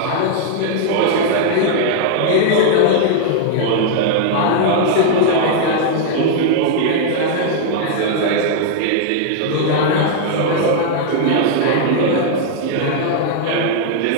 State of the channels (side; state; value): both; different; correlation -0.01